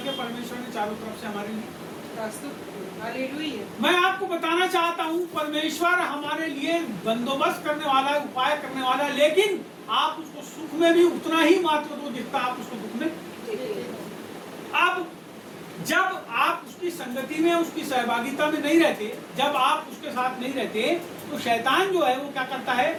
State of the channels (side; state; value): both; identical; correlation 1.00